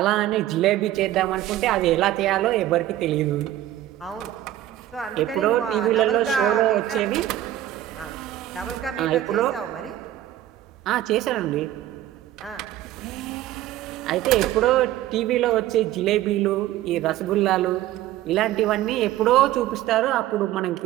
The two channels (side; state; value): left; quieter; 13.4 dB